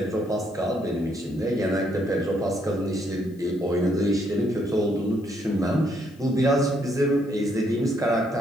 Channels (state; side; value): noise; left; hiss, 30 dB below the sound